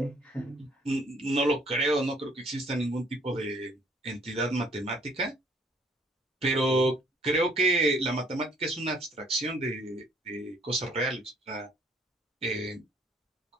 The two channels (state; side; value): normal; both; correlation 0.61